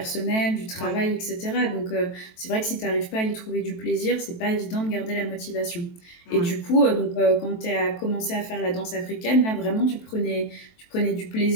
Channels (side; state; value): right; late; 23 ms